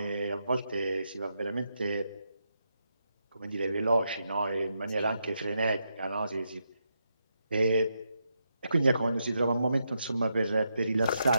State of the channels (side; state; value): both; inverted; correlation -0.83